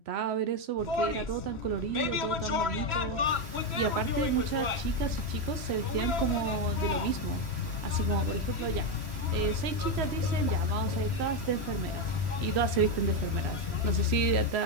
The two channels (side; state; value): left; late; 3.1 ms